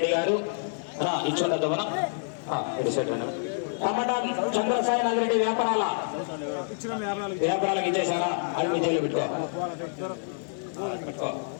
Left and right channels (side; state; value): right; silent; digital silence